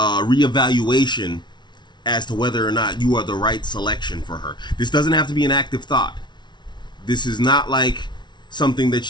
reevaluation as to whether or not you are the right selection for her. This doesn't have to be an active thought. This is not like something that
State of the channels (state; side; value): late; right; 0.21 ms